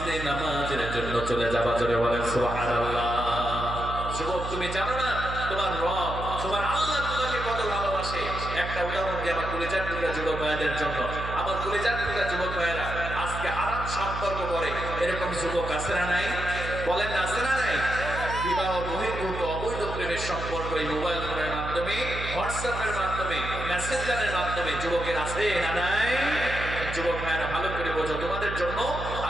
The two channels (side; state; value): right; noise; hum, 7 dB below the sound